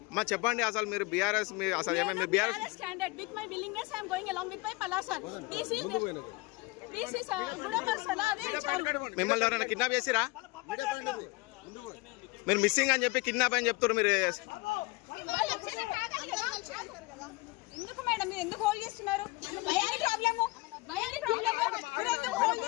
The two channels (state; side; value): quieter; right; 23.9 dB